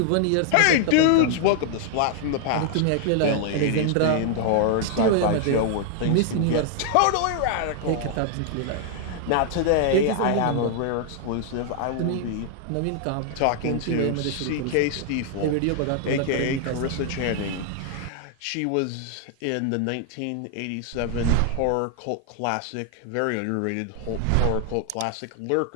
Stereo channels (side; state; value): both; different; correlation 0.00